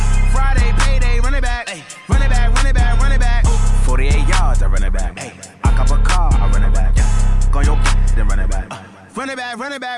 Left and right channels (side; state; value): both; identical; correlation 1.00